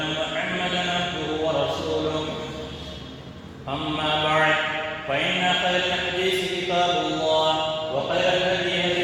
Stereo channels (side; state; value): both; identical; correlation 1.00